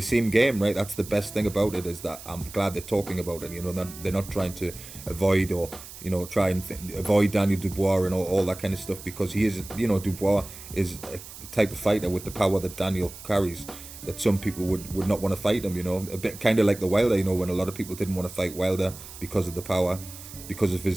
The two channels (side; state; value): right; noise; hiss, 15 dB below the sound